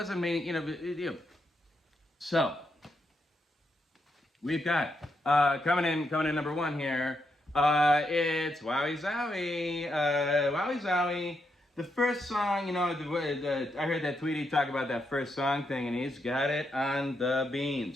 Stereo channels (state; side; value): normal; both; correlation 0.81